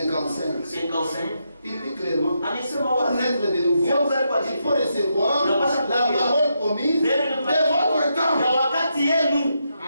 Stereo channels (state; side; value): inverted; both; correlation -0.82